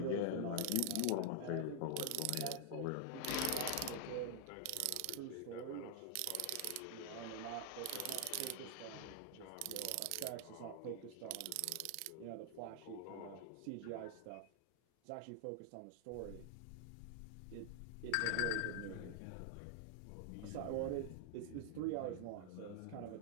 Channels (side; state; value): both; different; correlation -0.01